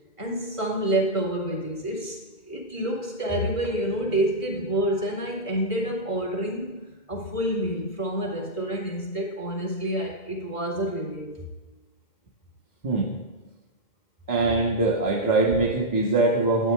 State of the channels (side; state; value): right; late; 2.1 ms